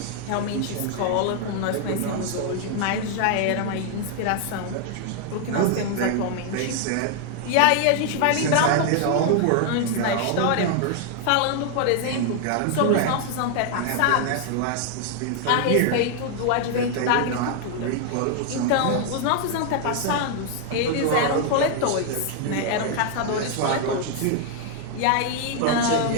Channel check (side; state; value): both; different; correlation 0.00